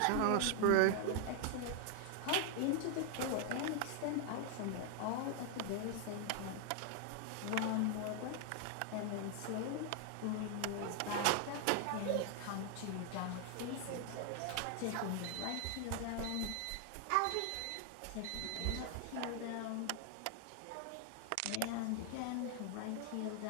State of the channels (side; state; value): both; different; correlation 0.00